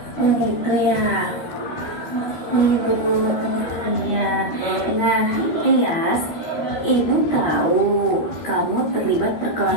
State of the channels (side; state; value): right; late; 13 ms